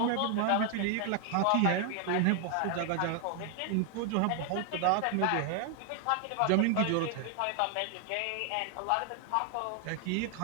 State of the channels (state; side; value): different; both; correlation 0.00